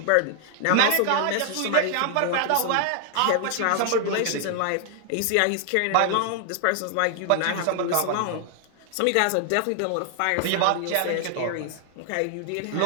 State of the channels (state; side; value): different; both; correlation 0.00